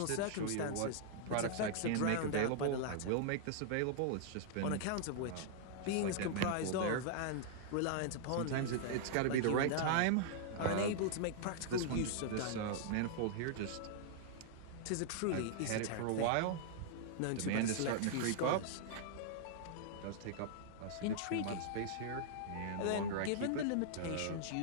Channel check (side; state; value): both; different; correlation -0.01